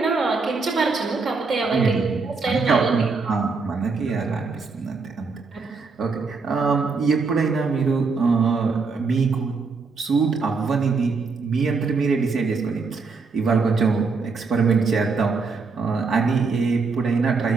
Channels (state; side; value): quieter; left; 4.5 dB